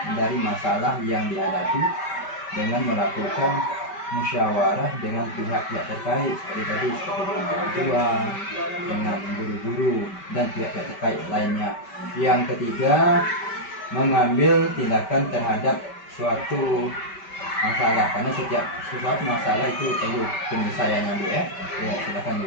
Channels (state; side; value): late; right; 5.2 ms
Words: dari masalah yang dihadapi dengan melakukan musyawarah dengan pihak-pihak terkait seperti dengan orang tua, dengan guru-guru dan pihak-pihak terkait lainnya. Yang ketiga, mengambil tindakan terhadap suatu masalah, karena setiap sesuatu masalah itu perlu penyelesaiannya Bu ya. Ya silakan